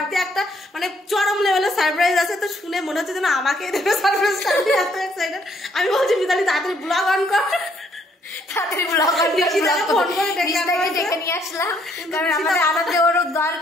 একটা মানে চরম লেভেলের সারপ্রাইজ আছে। তো শুনে মনে হচ্ছে যেন আমাকে দেবে সারপ্রাইজটা, আমি এত এক্সাইটেড। আমি বলছি মিতালি তাড়াতাড়ি ব্লগ অন কর, তাড়াতাড়ি ব্লগ অন করে ফোন করে ডেকে নিয়ে আসলাম, কারণ আমাদের আনন্দে ওর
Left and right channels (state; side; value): normal; both; correlation 0.68